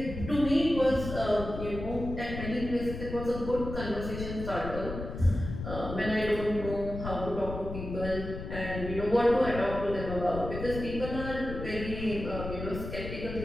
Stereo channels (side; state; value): left; noise; rumble, 7 dB below the sound